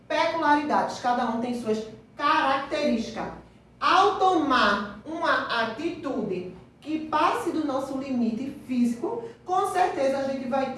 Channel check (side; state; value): both; identical; correlation 1.00